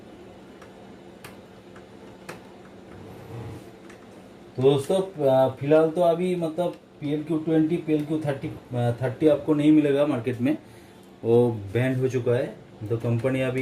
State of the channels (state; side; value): identical; both; correlation 1.00